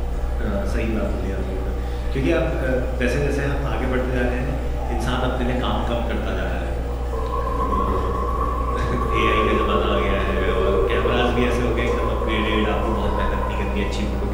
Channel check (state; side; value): identical; both; correlation 1.00